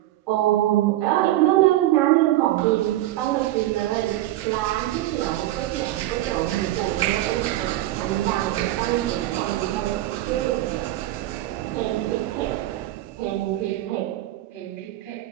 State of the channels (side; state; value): left; quieter; 15.2 dB